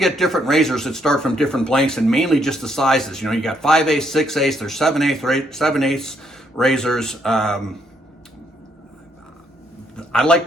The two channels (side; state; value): both; normal; correlation 0.72